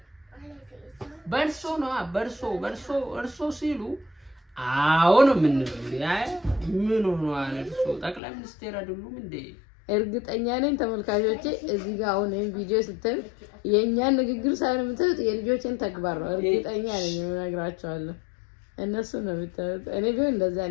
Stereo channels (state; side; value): drops out; right; at 8.2 s